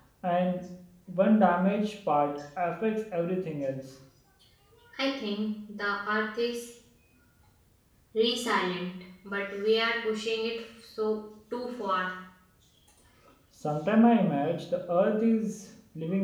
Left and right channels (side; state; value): both; identical; correlation 1.00